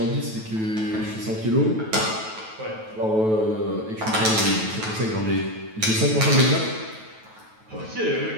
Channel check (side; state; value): left; late; 9.2 ms